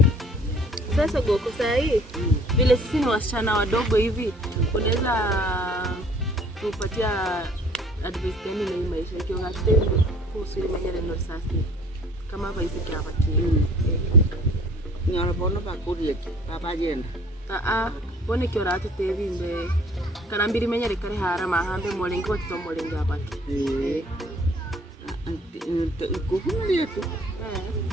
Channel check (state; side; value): normal; both; correlation 0.55